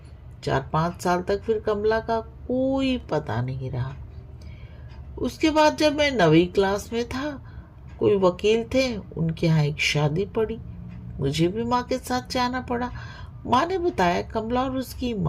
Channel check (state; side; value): identical; both; correlation 1.00